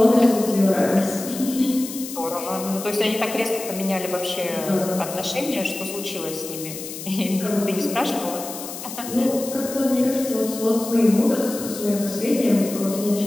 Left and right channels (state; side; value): noise; left; hiss, 10 dB below the sound